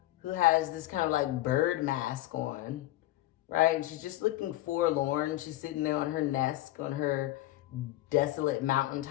who has this kind of like bird mask on, right? And she's just looking forlorn. She's sitting there on her nest, on her desolate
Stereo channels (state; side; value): quieter; right; 16.1 dB